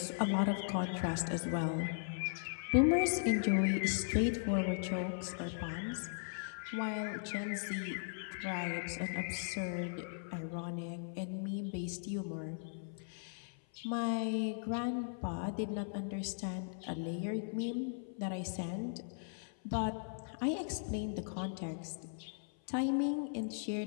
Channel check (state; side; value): silent; right; 52 dB below the other